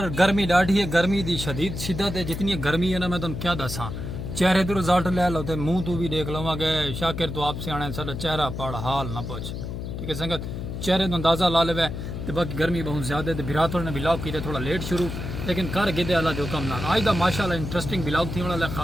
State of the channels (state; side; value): noise; left; hum, 6 dB below the sound